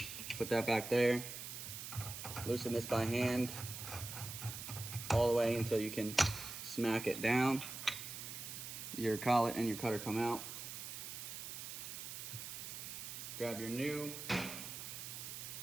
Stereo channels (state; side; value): noise; right; hiss, 8 dB below the sound